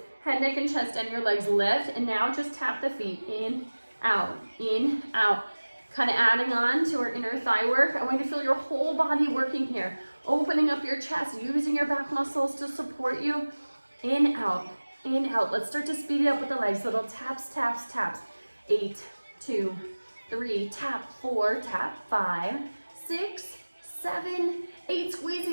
head, neck, and chest, and your legs lift, and now just tap the feet, in, out, kind of adding on to our inner thigh work. I want you to feel your whole body working here, opening up your chest, using your back muscles to support you, in, out, let's start to speed it up with the legs, little taps, 8, 2, 3, tap, 4, tap, 5, 6, 7, 8, squeeze the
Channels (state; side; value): inverted; both; correlation -1.00